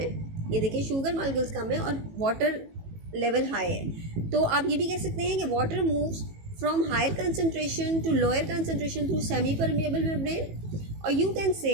ये देखिए, शुगर मालिक्यूल्स कम है और वाटर लेवल हाई है. तो आप ये भी कह सकते हैं कि water moves from higher concentration to lower concentration through semi-permeable membrane, or you can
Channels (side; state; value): left; late; 18 ms